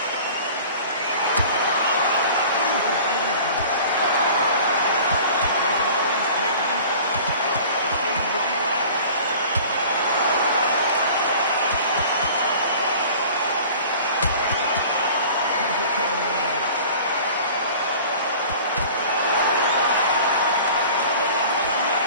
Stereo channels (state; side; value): inverted; both; correlation -0.44